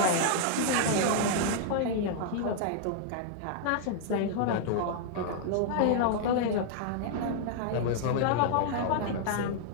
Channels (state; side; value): different; both; correlation -0.01